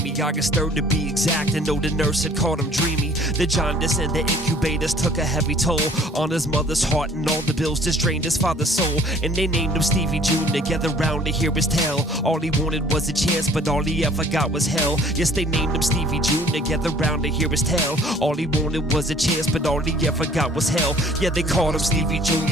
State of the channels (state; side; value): normal; both; correlation 0.55